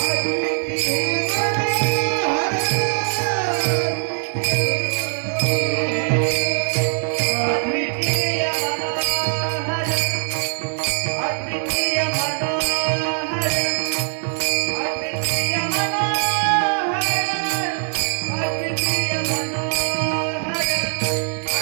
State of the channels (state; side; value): silent; left; 61 dB below the other